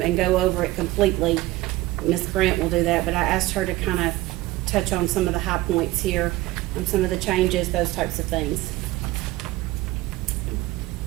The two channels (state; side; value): quieter; left; 18.0 dB